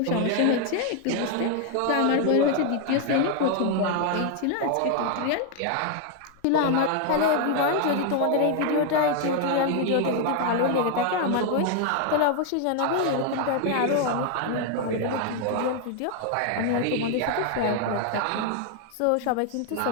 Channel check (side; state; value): both; different; correlation 0.00